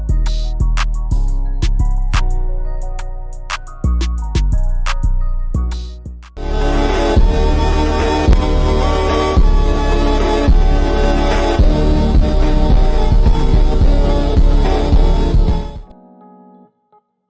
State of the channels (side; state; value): both; identical; correlation 1.00